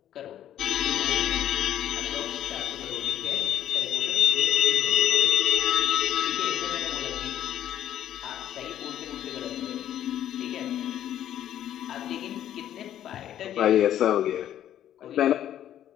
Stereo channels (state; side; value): quieter; right; 11.3 dB